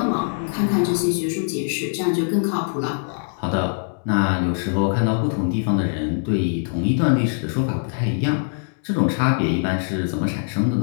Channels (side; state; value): right; silent; digital silence